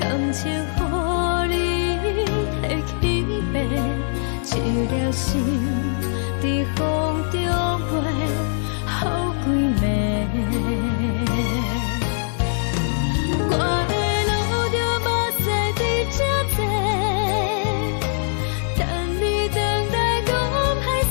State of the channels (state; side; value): silent; right; digital silence